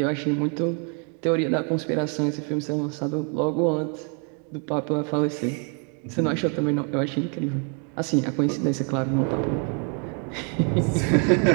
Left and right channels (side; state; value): left; quieter; 38.2 dB